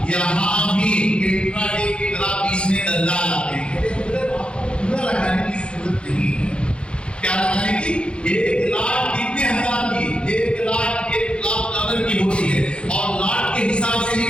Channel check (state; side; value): late; right; 0.057 ms